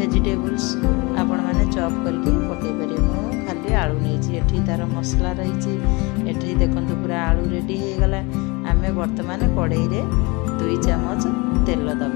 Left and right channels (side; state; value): right; quieter; 26.7 dB